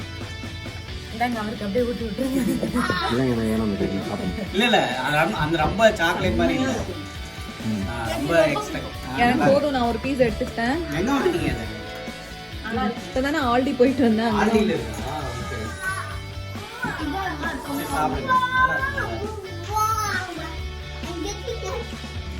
இந்தாங்க அவருக்கு அப்படியே ஊட்டி விட்டுருங்க. இல்லைங்க நான் ஏனோ கேட்கல சாப்பிடுங்க. இல்ல அந்த ரொம்ப சாக்லேட் மாதிரி இல்ல. ரொம்ப எக்ஸ்பெக்ட். எனக்கு போதும், நான் ஒரு பீஸ் எடுத்துட்டேன். எங்க வாங்குனீங்க அது? இப்பதானே ஆல்டி போயிட்டு வந்தேன். ஆல்டில இருக்கா? ஓகே. சாப்பிடுங்க.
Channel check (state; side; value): identical; both; correlation 1.00